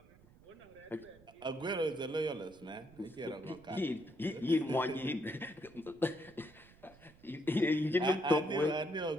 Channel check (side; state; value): right; noise; rumble, 25 dB below the sound